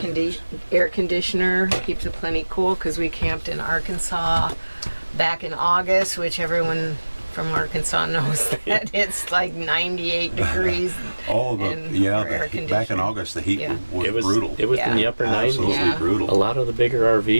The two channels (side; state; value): both; inverted; correlation -1.00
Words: air conditioner keeps it plenty cool because we camped in Arkansas back in August, which everyone from Arkansas knows that it's like 98 degrees. Oh, And yeah. for air Back in conditioning. August, the heat Yeah. was It was brutal. It was in the Yeah. upper 90s. Absolutely Yeah. brutal. A lot of the bigger